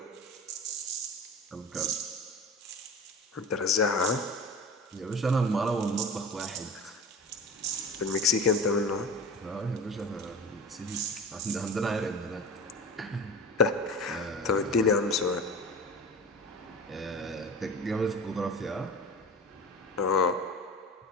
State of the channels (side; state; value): both; normal; correlation 0.33